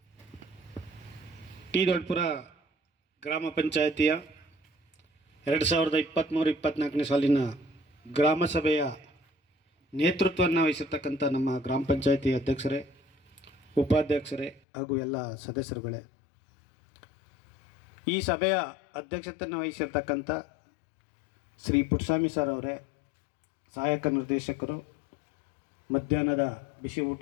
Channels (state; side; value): drops out; right; at 14.6 s